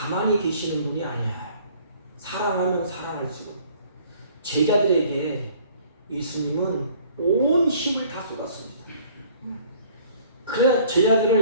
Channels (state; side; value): inverted; both; correlation -0.55